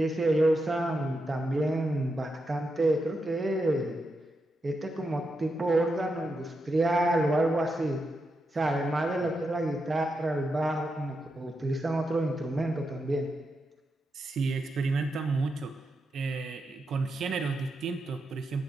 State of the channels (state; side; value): normal; both; correlation 0.86